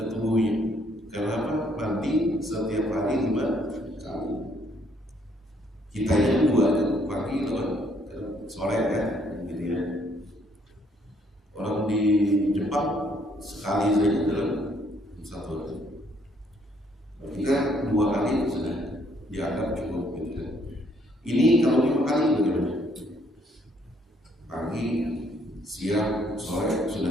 tubuhnya. Kenapa? Mandi setiap hari 5 kali. Kita yang 2 pagi sore kan, gitu ya. Orang di Jepang sekali saja dalam 1 hari. Ketika 2 kali sudah dianggap cukup, gitu kan. Ini kalau 5 kali bagaimana? Pagi, siang, sore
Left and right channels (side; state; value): both; normal; correlation 0.68